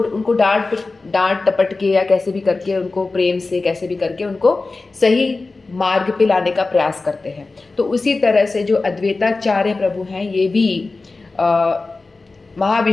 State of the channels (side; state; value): right; quieter; 3.6 dB